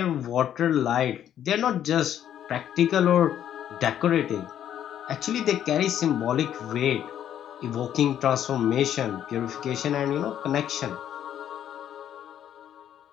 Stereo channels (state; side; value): quieter; right; 10.4 dB